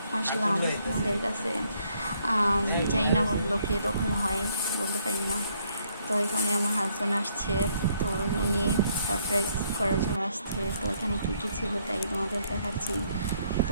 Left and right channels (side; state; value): both; inverted; correlation -0.70